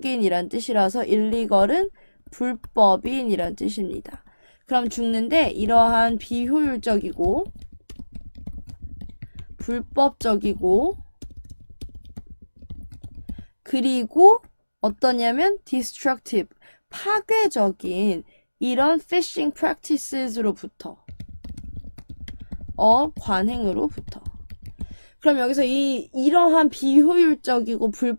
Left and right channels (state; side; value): inverted; both; correlation -1.00